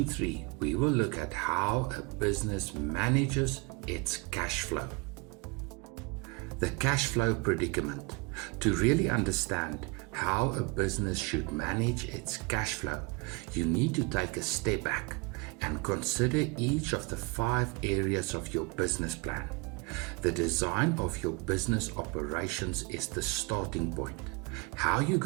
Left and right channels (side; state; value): left; quieter; 26.7 dB